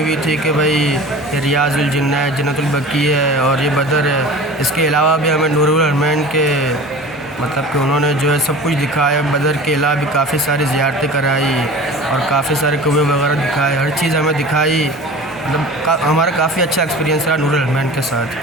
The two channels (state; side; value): normal; both; correlation 0.38